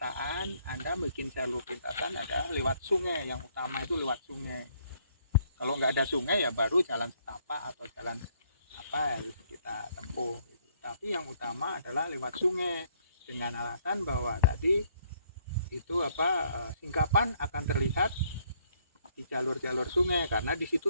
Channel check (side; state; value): both; inverted; correlation -0.67